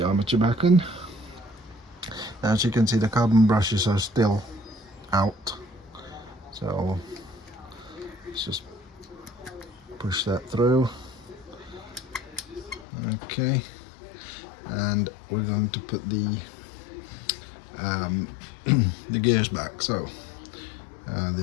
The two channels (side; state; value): right; drops out; at 12.9 s